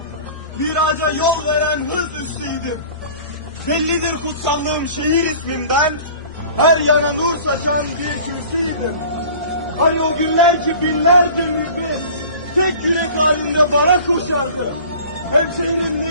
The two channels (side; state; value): both; inverted; correlation -0.43